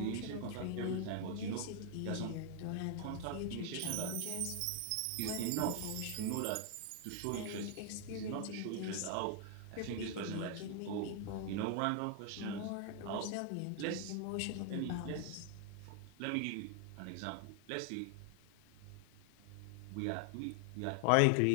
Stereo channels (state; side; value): different; both; correlation 0.00